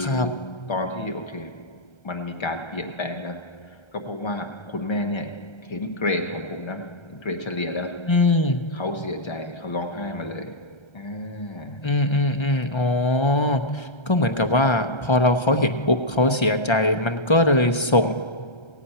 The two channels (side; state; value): right; late; 1.3 ms